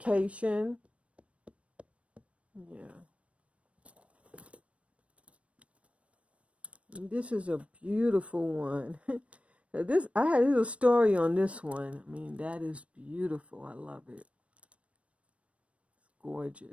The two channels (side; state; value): left; late; 0.063 ms